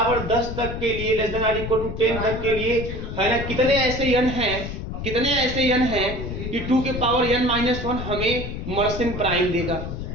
10 तक के लिए, less than or equal to 10 तक के लिए, है ना, कितने ऐसे n हैं कितने ऐसे n हैं कि 2 के पावर n माइनस 1 हमें मर्सियन प्राइम देगा।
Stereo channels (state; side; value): noise; left; rumble, 6 dB below the sound